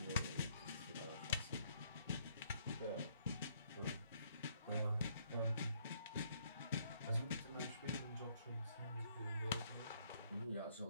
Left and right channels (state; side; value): inverted; both; correlation -0.68